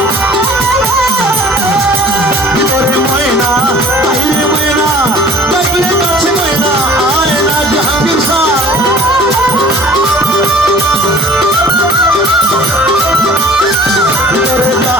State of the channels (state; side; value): normal; both; correlation 0.47